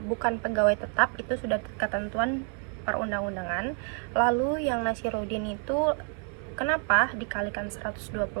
bukan pegawai tetap, itu sudah ketentuan perundang-undangan. Lalu yang Nasiruddin itu kenapa dikalikan 120%,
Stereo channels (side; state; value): left; quieter; 39.3 dB